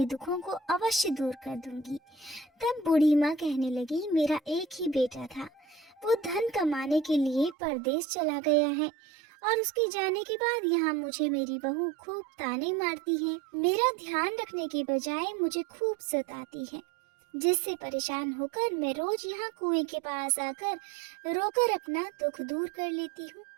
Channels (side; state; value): left; drops out; at 7.6 s